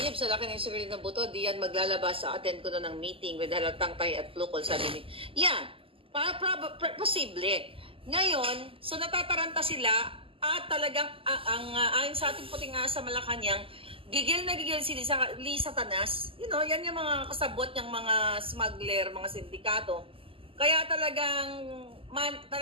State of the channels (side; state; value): left; late; 0.26 ms